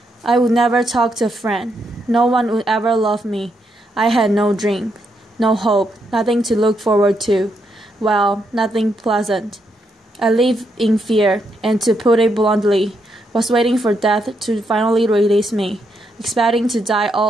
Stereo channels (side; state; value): both; normal; correlation 0.79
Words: I would never talk to a friend. No one would ever love me. I had no dream, no hope, nothing to look forward to. Well, nothing pleasant. I lived in fear, and to put it bluntly, was waiting for death to finally release me, expecting to die